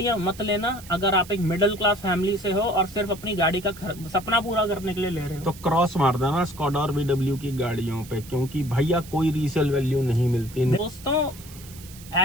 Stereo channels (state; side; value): noise; right; hiss, 18 dB below the sound